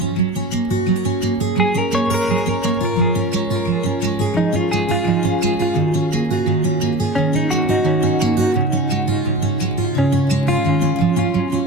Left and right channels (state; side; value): normal; both; correlation 0.35